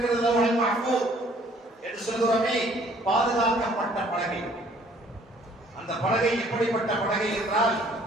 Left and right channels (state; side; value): normal; both; correlation 0.59